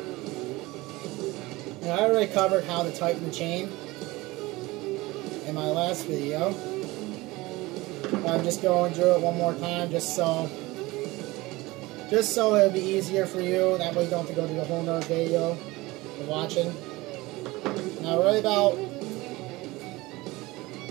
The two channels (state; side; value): quieter; left; 20.7 dB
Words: And I already covered how to tighten the chain in my last video. I'm just going through it one more time just so it'll be easier for you. That way you don't have to go through the whole nother video you're watching. Now right about